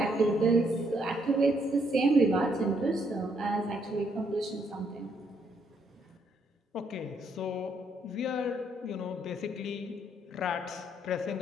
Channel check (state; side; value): normal; both; correlation 0.72